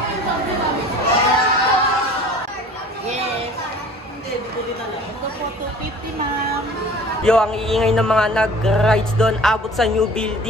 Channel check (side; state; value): both; normal; correlation 0.46